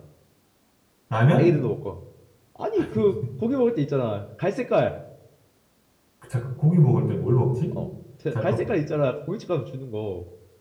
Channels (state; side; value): identical; both; correlation 1.00